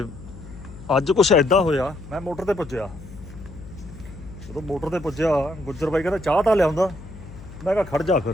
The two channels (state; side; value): noise; left; hum, 15 dB below the sound